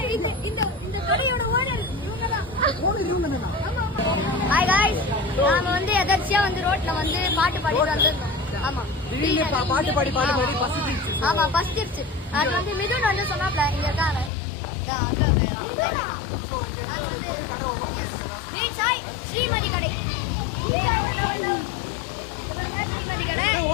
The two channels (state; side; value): drops out; right; at 14.3 s